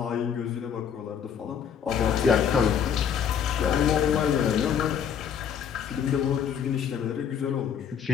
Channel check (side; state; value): right; quieter; 7.9 dB